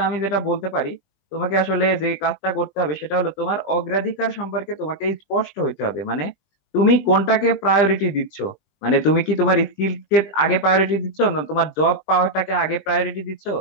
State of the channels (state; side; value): late; right; 20 ms